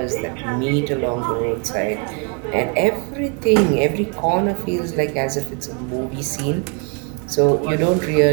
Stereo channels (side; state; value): left; quieter; 34.8 dB